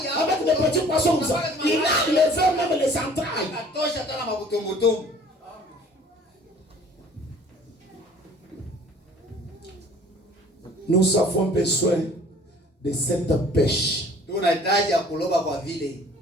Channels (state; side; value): normal; both; correlation 0.51